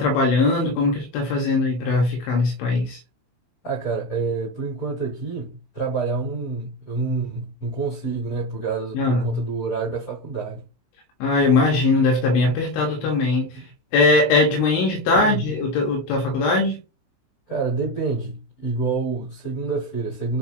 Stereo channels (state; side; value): late; right; 16 ms